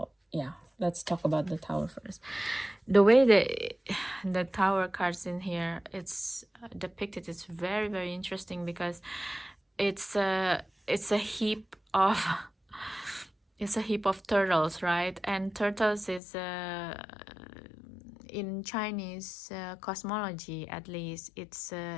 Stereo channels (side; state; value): right; drops out; at 16.2 s